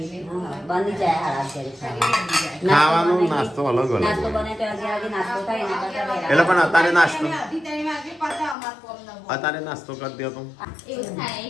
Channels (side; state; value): right; drops out; at 8.6 s